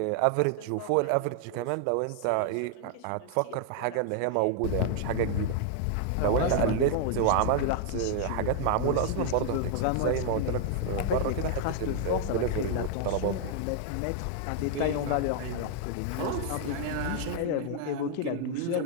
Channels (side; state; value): both; different; correlation 0.00